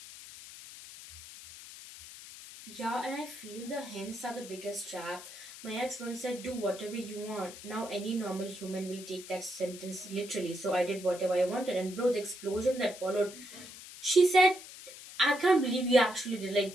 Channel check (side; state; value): left; noise; hiss, 15 dB below the sound